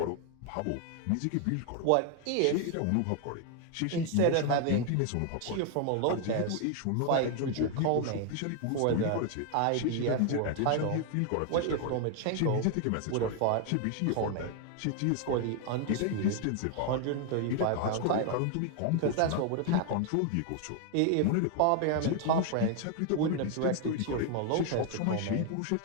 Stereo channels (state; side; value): different; both; correlation 0.00